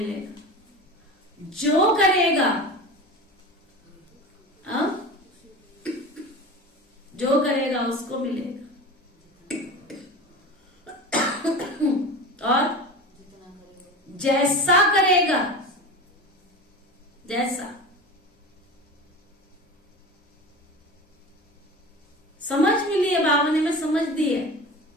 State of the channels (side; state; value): both; normal; correlation 0.32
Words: जो करेगा, जो करेगा उसको मिलेगा। और जैसा करेगा, जैसा समझ मिली है बाबा ने, मैं समझ दी है।